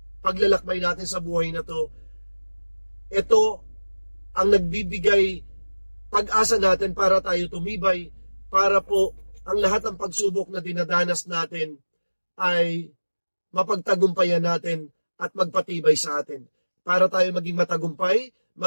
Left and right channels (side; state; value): both; inverted; correlation -1.00